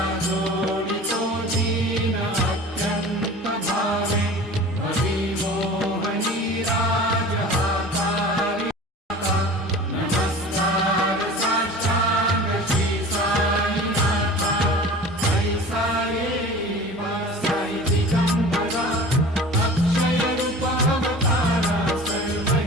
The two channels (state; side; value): normal; both; correlation 0.40